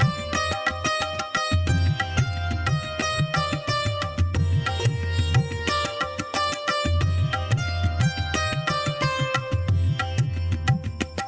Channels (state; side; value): identical; both; correlation 1.00